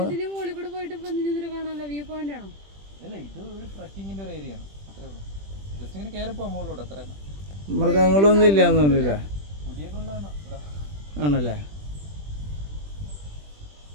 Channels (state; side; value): late; left; 20 ms